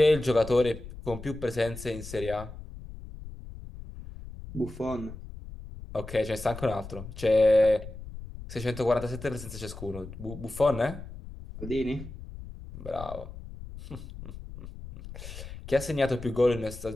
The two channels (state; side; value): noise; left; rumble, 13 dB below the sound